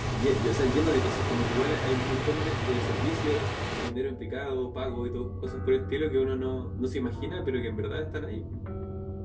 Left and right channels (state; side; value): identical; both; correlation 1.00